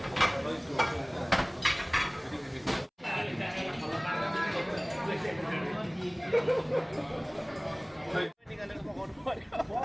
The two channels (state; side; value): identical; both; correlation 1.00